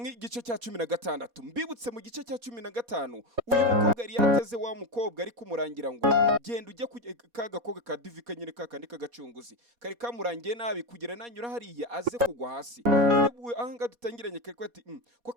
igice cya 16. Mbibutse mu gice cya 15 uyu mukobwa yari yateze wa mukobwa ari kumurangira ngo genda ujye kagakobwa ka divika nyine kakandi kagacunguzi kari kamurangiye nabi kugira nanyura hariya aze kugwa hasi. None ahanga dutangiranye kari kwati ko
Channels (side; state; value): left; late; 4.2 ms